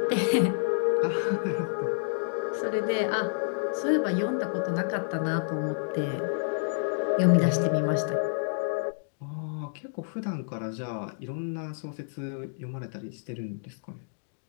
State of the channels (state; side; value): silent; right; digital silence